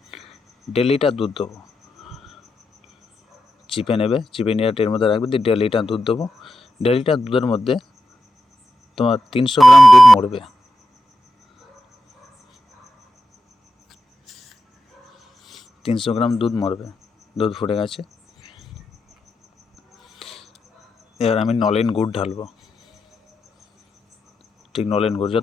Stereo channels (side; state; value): both; normal; correlation 0.88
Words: 1.5 লিটার দুধ দেবো। চিপে নেবে, চিপে নিয়ে ট্রের মধ্যে রাখবে, দিয়ে 1.5 লিটার দুধ দেবো। 1.5 লিটার দুধের মধ্যে তোমার 300 গ্রাম দুধ মরবে। 300 গ্রাম দুধ মরবে। দুধ ফুটে গেছে। এবার আমি নলেন গুড় ঢালবো। ঠিক নলেন গুড়